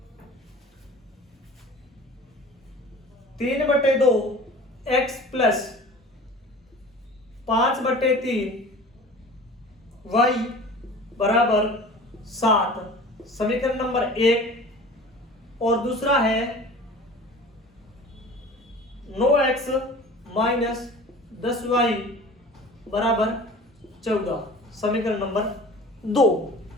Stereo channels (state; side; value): normal; both; correlation 0.42